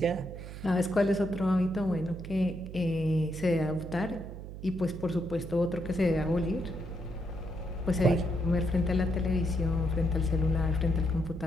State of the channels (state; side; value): noise; right; hum, 11 dB below the sound